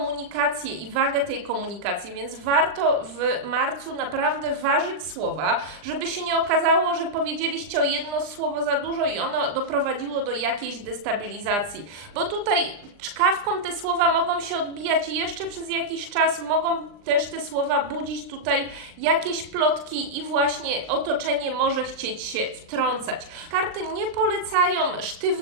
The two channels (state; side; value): late; left; 39 ms